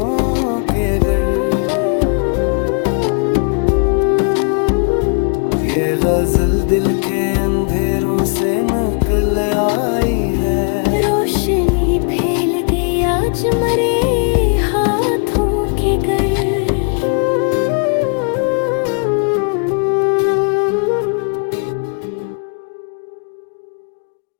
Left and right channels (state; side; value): quieter; right; 39.3 dB